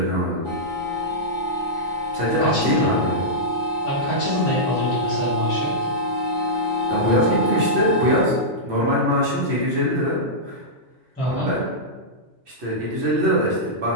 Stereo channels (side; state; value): both; normal; correlation -0.12